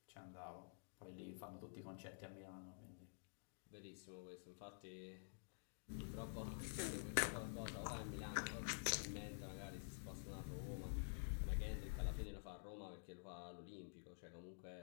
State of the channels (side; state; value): right; silent; digital silence